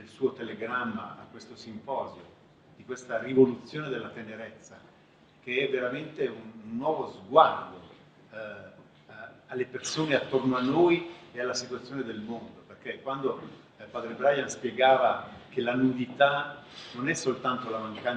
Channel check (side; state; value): both; identical; correlation 1.00